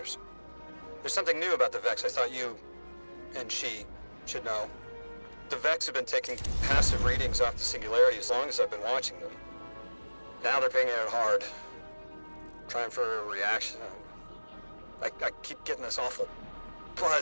There's something new about the Vex I thought you and she should know. The Vex have been taking passive readings off the Singularity as long as I've been watching them. Now they're pinging it hard. Trying for a reaction. I keep getting this awful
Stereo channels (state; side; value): inverted; both; correlation -1.00